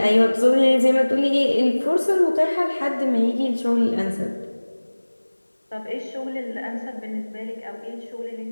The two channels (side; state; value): both; inverted; correlation -1.00